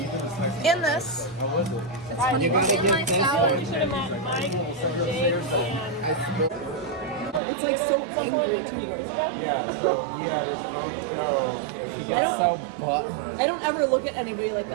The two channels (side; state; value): left; drops out; at 7.4 s